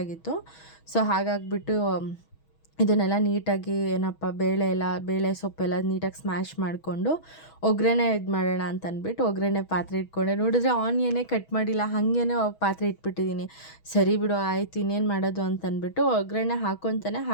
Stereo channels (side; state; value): right; late; 6.2 ms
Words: ಸೊ ಹಾಗಾಗಿಬಿಟ್ಟು ಇದನ್ನೆಲ್ಲ ನೀಟಾಗಿ ಬೇಳೆ ಸೊಪ್ಪೆಲ್ಲ ನೀಟಾಗಿ ಸ್ಮ್ಯಾಶ್ ಮಾಡಿಕೊಂಡು ಒಗ್ಗರಣೆ ಇದು ಮಾಡೋಣ ಅಂತ ಅಂದ್ಬಿಟ್ಟು ಒಗ್ಗರಣೆ ಪಾತ್ರೆ ಇಟ್ಕೊಂಡೆ. ನೋಡಿದ್ರೆ ಆನಿಯನ್ನೇ ಕಟ್ ಮಾಡಿಲ್ಲ, ಹಾಗೇ ಪಾತ್ರೆ ಇಟ್ಬಿಟ್ಟಿದ್ದೀನಿ. ಸರಿ ಬಿಡು ಆಯಿತು, ಇನ್ನೇನು ಮಾಡೋದು ಅಂತಂದ್ಬಿಟ್ಟು ಒಗ್ಗರಣೆ ಹಾಕ್ಕೊತಾನೆ